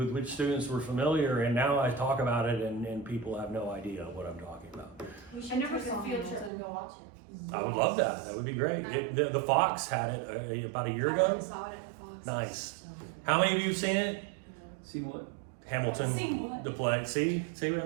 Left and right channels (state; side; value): drops out; left; at 6.5 s